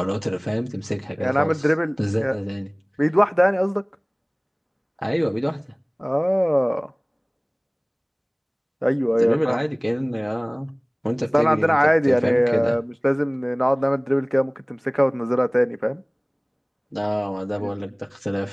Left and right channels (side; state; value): both; identical; correlation 1.00